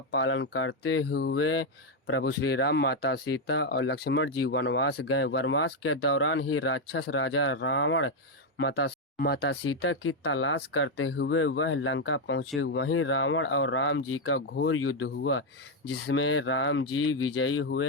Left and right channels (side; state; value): both; normal; correlation 0.03